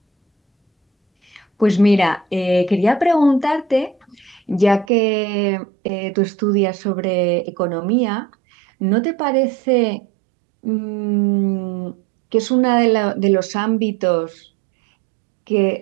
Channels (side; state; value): left; drops out; at 4.9 s